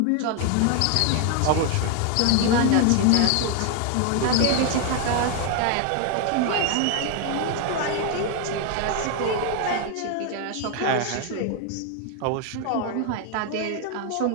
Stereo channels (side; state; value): both; different; correlation 0.01